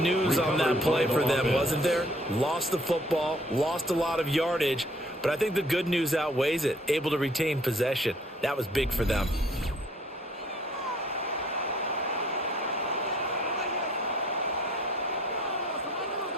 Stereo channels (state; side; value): normal; both; correlation 0.59